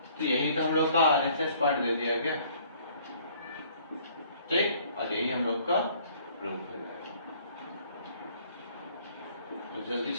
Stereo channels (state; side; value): inverted; both; correlation -0.58